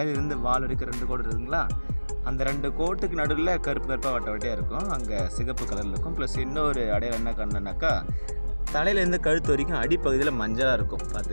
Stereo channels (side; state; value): both; inverted; correlation -1.00